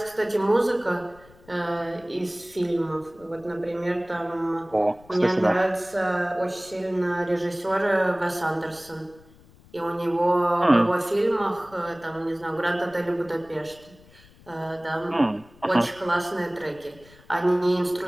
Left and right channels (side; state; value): left; noise; rumble, 25 dB below the sound